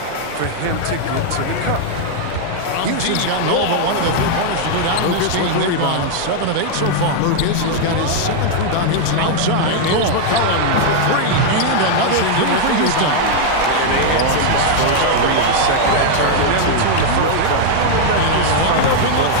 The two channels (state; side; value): different; both; correlation 0.00